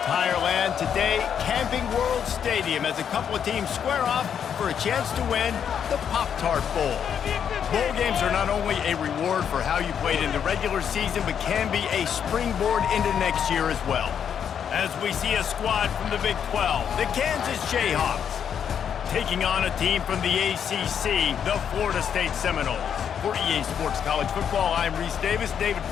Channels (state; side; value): quieter; right; 8.2 dB